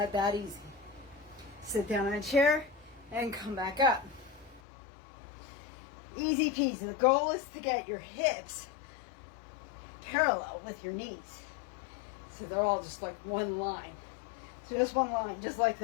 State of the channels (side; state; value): right; drops out; at 4.6 s